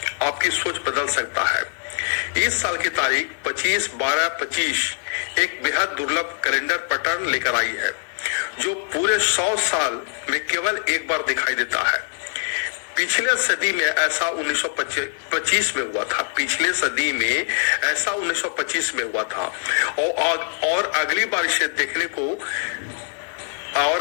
आपकी सोच बदल सकता है। इस साल की तारीख 25/12/25 एक बेहद दुर्लभ कैलेंडर पैटर्न लेकर आई है, जो पूरे 100 साल में केवल एक बार दिखाई देता है। पिछले सदी में ऐसा 1925 में हुआ था। पिछले सदी में ऐसा 1925 में हुआ था और अगली बार इसे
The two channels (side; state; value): right; silent; 55 dB below the other